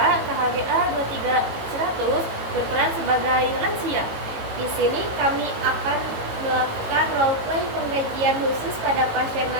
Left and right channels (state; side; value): late; left; 18 ms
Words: KHGA 23100, berperan sebagai lansia. Di sini kami akan melakukan role play pengkajian khusus pada pasien